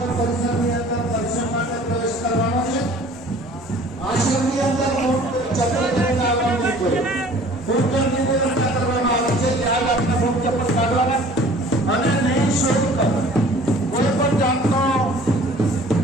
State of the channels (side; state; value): both; normal; correlation 0.50